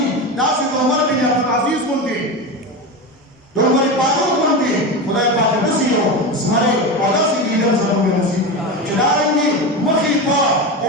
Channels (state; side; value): normal; both; correlation 0.21